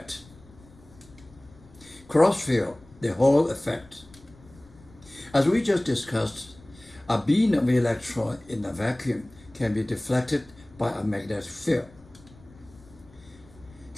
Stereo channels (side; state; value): left; noise; rumble, 24 dB below the sound